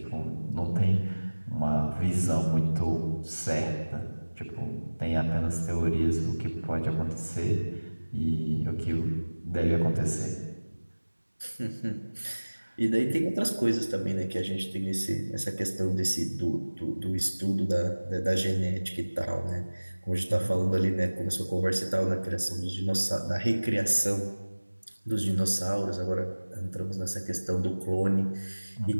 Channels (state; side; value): inverted; both; correlation -1.00